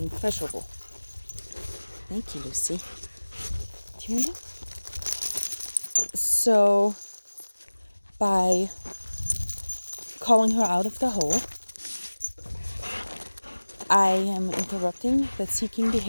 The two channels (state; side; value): inverted; both; correlation -1.00